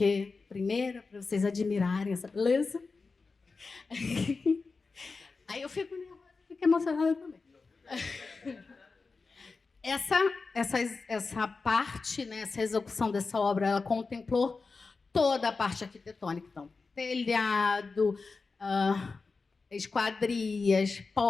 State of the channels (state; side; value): quieter; right; 4.3 dB